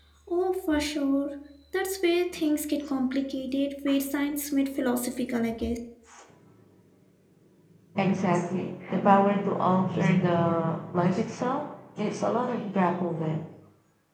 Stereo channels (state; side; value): identical; both; correlation 1.00